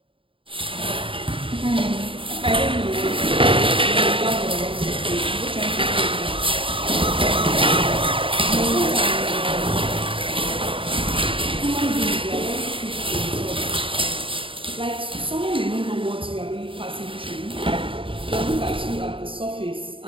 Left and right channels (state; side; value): late; left; 0.25 ms